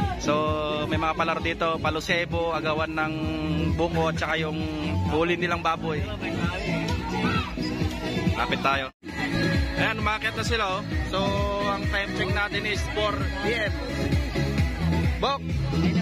So may mga palaro dito, palusebo, agawan ng buko at saka yung huli nilang baboy. Lapit tayo. Ayan, umakit na sila oh. So ang time check natin is 4 PM.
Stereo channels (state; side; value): identical; both; correlation 1.00